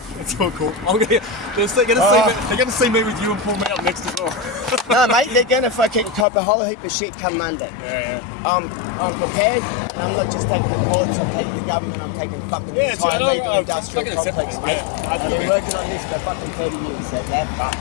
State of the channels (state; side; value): drops out; right; at 6.2 s